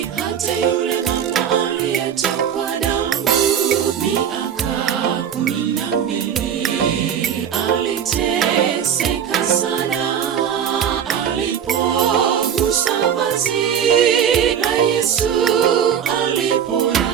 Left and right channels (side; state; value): left; quieter; 8.5 dB